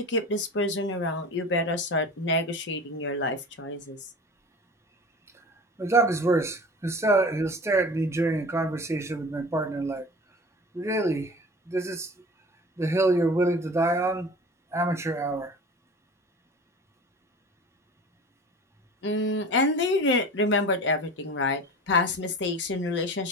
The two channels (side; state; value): both; normal; correlation 0.37